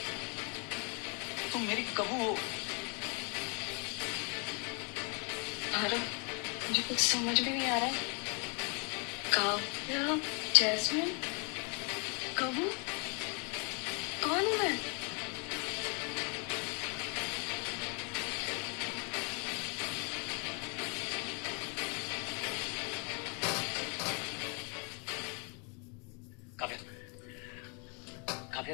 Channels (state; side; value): quieter; right; 35.8 dB